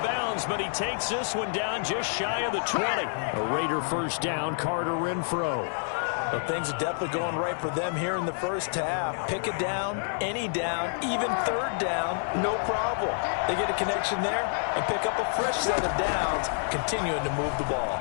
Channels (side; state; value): right; silent; 59 dB below the other